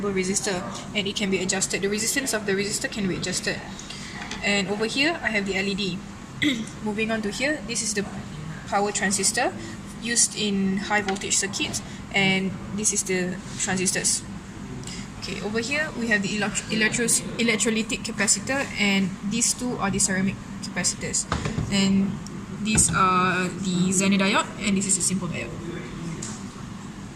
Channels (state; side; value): identical; both; correlation 1.00